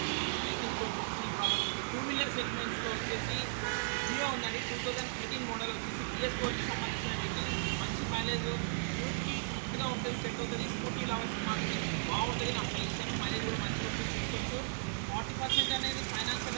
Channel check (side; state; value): left; silent; digital silence